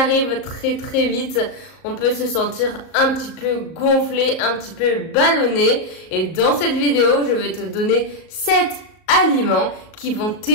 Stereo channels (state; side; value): late; right; 38 ms